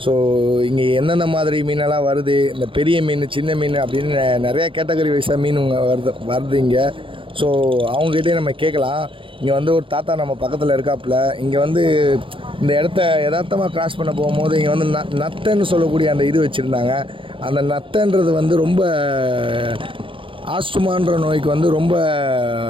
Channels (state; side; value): late; left; 0.25 ms